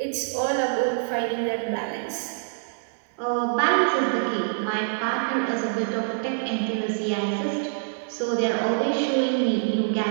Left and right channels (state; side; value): silent; left; digital silence